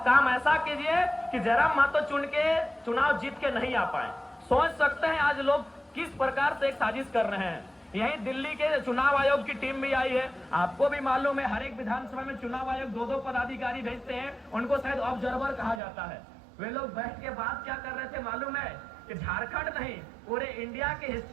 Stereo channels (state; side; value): drops out; left; at 15.8 s